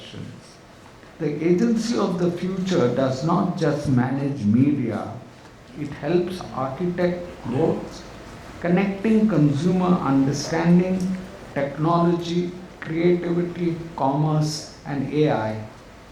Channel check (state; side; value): identical; both; correlation 1.00